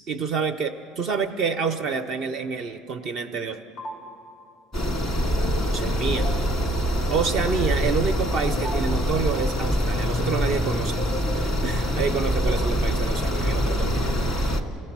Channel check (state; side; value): normal; both; correlation 0.63